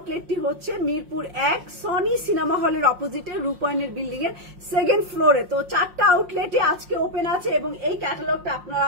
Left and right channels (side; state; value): left; late; 5.6 ms